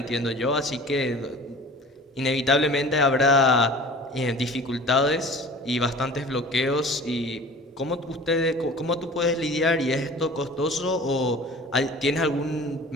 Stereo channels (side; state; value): both; normal; correlation 0.42